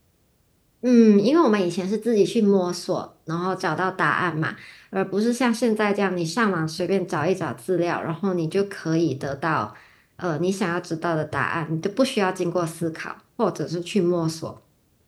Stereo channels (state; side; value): identical; both; correlation 1.00